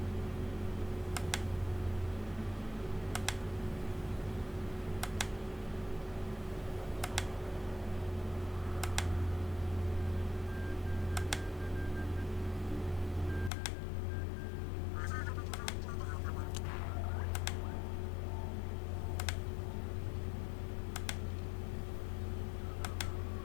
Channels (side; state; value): right; drops out; at 13.5 s